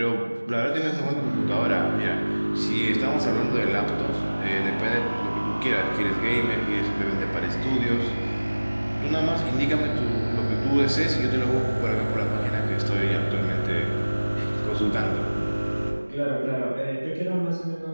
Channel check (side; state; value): both; inverted; correlation -1.00